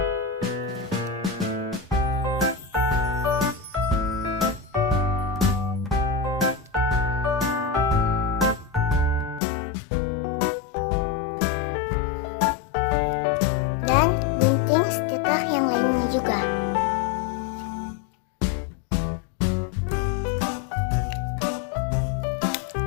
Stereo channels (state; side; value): drops out; right; at 9.4 s